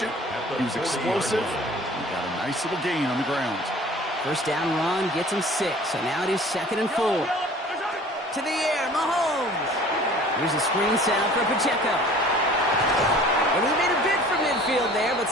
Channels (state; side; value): normal; both; correlation 0.48